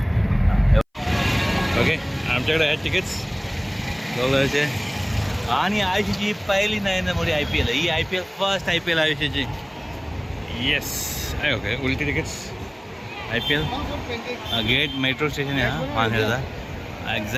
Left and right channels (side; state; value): both; identical; correlation 1.00